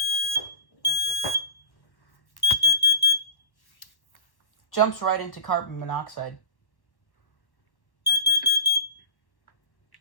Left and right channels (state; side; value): late; right; 1.1 ms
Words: Jumps right into carbon monoxide.